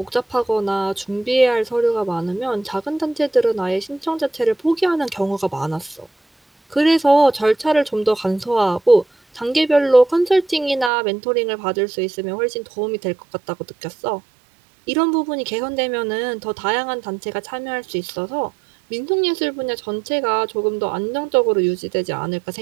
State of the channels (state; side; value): drops out; left; at 10.9 s